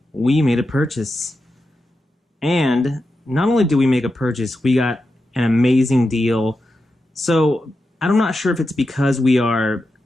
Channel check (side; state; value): both; normal; correlation 0.89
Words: we made a purchase. And not only did we make a purchase, we got an amazing deal. So I'm not sure if it's because we are